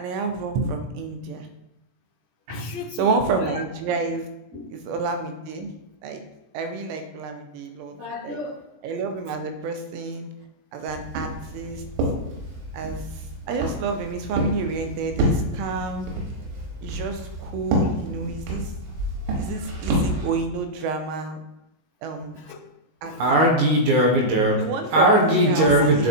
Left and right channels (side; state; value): left; late; 19 ms